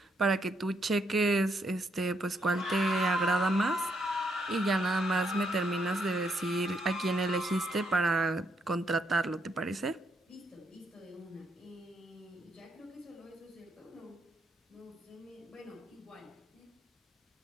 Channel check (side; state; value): both; normal; correlation 0.75